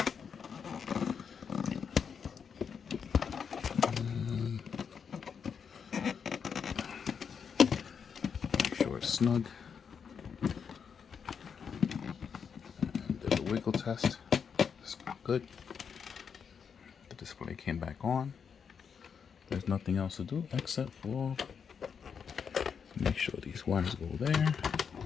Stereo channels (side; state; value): right; quieter; 6.7 dB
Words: Make sure sure it's snug. And did a wiggle test. It's good. The display came back on. There's nothing else to do except for make sure these wires go there.